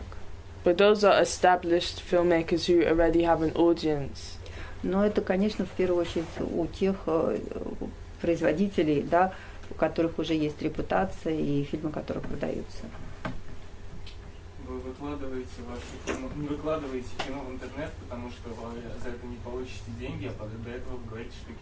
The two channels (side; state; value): both; identical; correlation 1.00